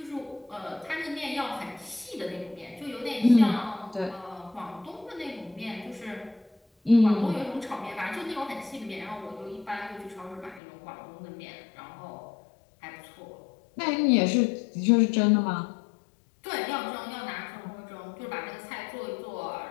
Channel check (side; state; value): right; drops out; at 10.6 s